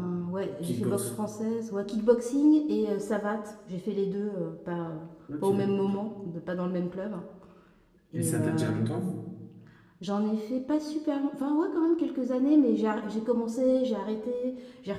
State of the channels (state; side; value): identical; both; correlation 1.00